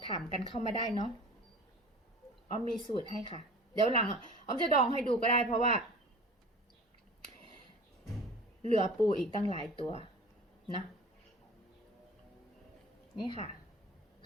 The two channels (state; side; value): normal; both; correlation 0.41